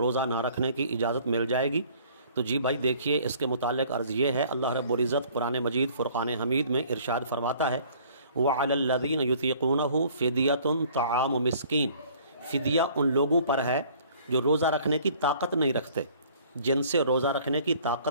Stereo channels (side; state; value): both; inverted; correlation -0.55